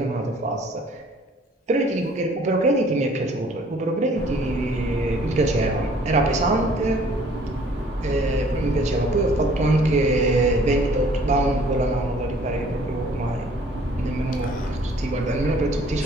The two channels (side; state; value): both; normal; correlation 0.56